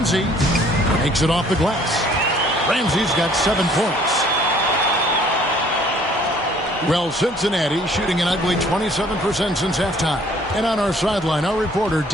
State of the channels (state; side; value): normal; both; correlation 0.58